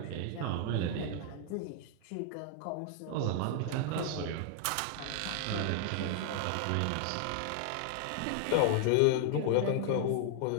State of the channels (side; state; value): both; different; correlation 0.00